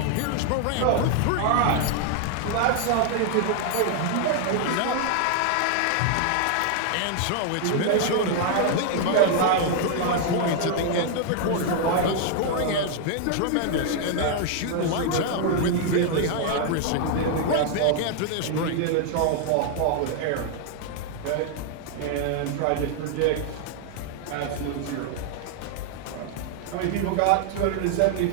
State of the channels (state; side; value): different; both; correlation 0.00